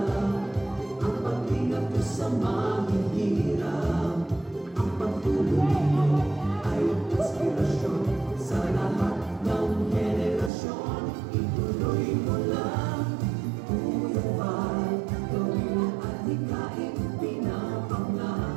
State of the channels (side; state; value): left; drops out; at 10.5 s